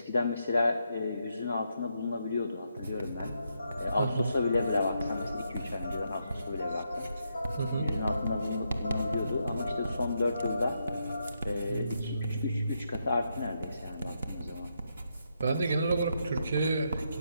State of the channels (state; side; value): inverted; both; correlation -0.80